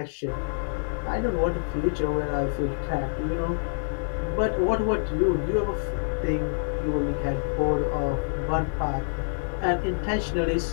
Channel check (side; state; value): right; silent; digital silence